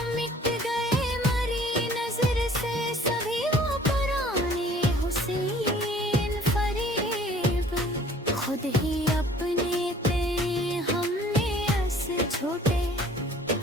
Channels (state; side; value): normal; both; correlation 0.53